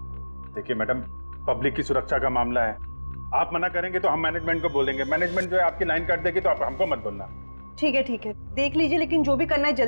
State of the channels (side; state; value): both; inverted; correlation -1.00